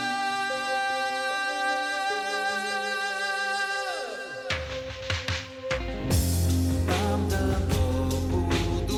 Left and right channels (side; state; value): both; identical; correlation 1.00